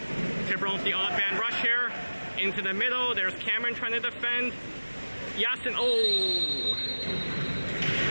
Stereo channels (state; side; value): inverted; both; correlation -1.00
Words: Tiburon with the odd man rush here. Into the middle. There's Cameron trying to defend. Yasin. Oh!